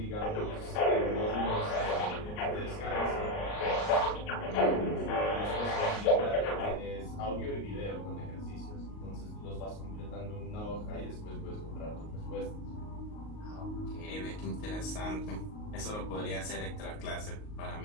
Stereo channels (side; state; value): right; late; 38 ms